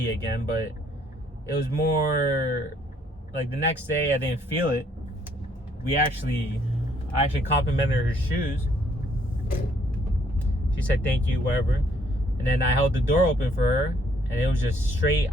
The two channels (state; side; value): normal; both; correlation 0.66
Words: again, but it was more like the next day I didn't feel it. I actually complimented her shoes. She said thank you, whatever. And then I held the door open for her, and it was just straight